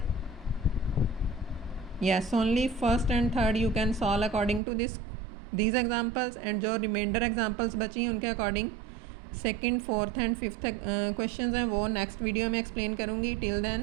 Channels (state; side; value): drops out; left; at 4.6 s